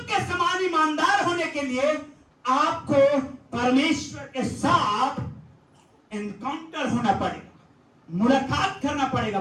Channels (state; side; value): identical; both; correlation 1.00